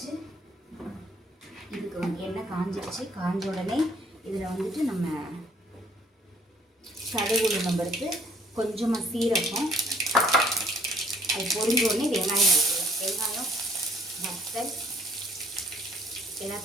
இதுக்கு வந்து எண்ணெய் காஞ்சிடுச்சு. காஞ்ச உடனே இதில் வந்துட்டு நம்ம கடுகு உளுந்தம் பருப்பு, கொஞ்சமாக சீரகம், அது பொரிஞ்ச உடனே வெங்காயம் போட்டுருவோம். வெங்காயம் வத்தல்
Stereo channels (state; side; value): normal; both; correlation 0.61